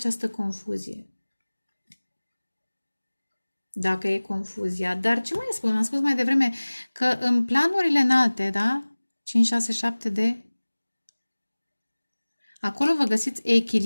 confuzie. Dacă e confuzia. Dar ce mai spun? Am spus mai devreme că în planurile înalte, da? 5, 6, 7 de... Acolo vă găsiți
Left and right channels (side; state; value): both; inverted; correlation -1.00